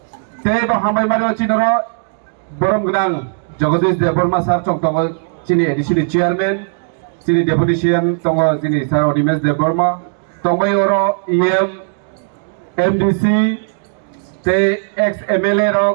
তে ব হামবাই মারি চিনর বরম গ্রাং জগদীশ দেববর্মা স্যার চংতগ চিনি এডিসিনি চেয়ারম্যান চিনি ডেপুটি সিএম তং চিনি স্যার অনিমেশ দেববর্মা तंबाई ओरो ईएम एमडीसी ते एक्स एमएलए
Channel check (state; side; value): silent; left; digital silence